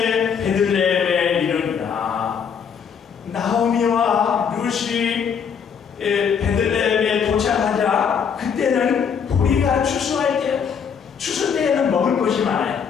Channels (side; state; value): right; quieter; 6.9 dB